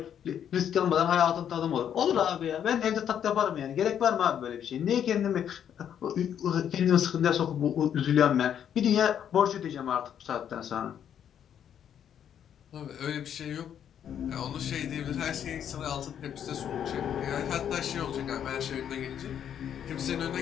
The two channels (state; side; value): quieter; right; 9.2 dB